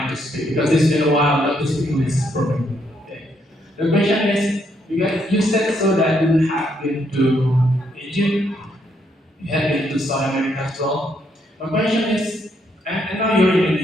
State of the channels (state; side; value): normal; both; correlation 0.74